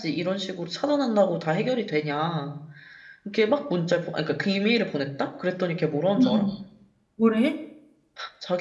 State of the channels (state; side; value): identical; both; correlation 1.00